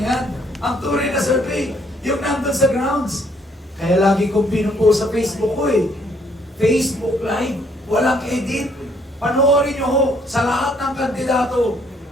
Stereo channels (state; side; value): normal; both; correlation 0.67